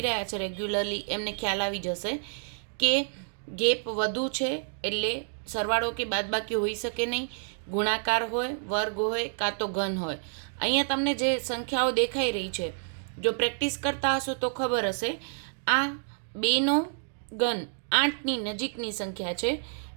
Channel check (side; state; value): left; silent; digital silence